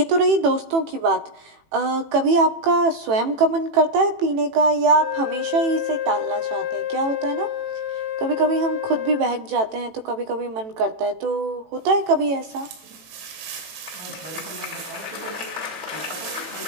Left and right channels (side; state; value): left; late; 18 ms